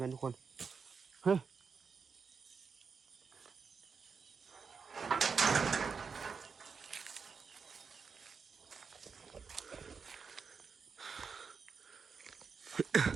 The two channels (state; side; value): quieter; left; 5.5 dB